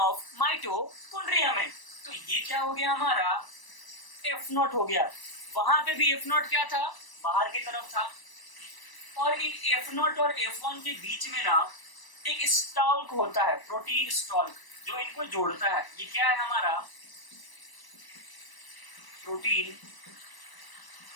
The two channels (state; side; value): late; right; 1.0 ms